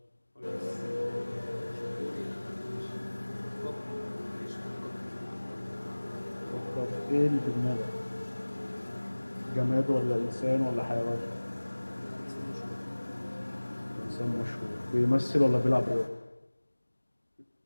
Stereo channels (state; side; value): inverted; both; correlation -1.00